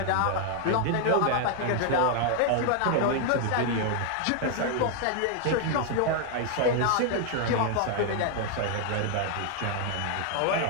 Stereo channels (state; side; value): different; both; correlation 0.00